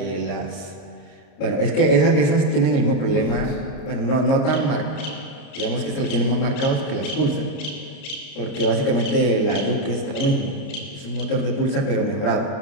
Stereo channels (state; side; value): late; right; 30 ms